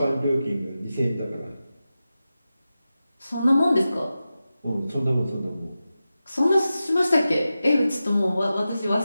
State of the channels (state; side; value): inverted; both; correlation -0.93